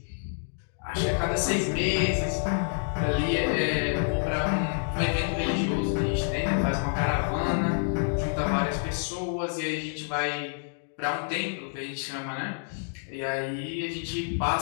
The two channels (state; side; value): silent; right; digital silence